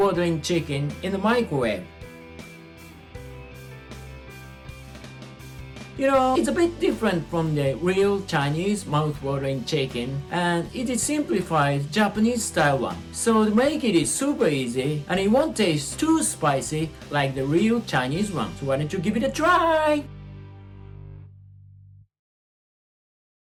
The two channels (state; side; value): identical; both; correlation 1.00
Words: chicken in the microwave. You know, it's a bit different from the real Chinese mouth-watering chicken, and it is simplified Japanese style one. So to make it is super easy and it won't taste too spicy like the real Chinese one. So why don't you give it a try?